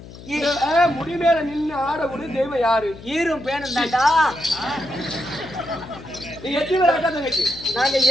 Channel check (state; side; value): noise; left; hum, 16 dB below the sound